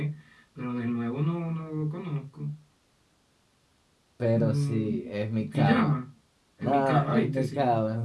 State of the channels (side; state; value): both; identical; correlation 1.00